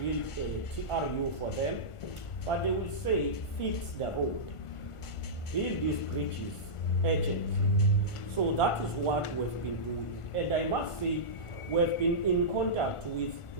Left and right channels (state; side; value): late; right; 1.4 ms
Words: build a TRU for them, but they will say, fix the road, build these bridges urgently. So that is what we've been doing. And I must say, we've been in contact with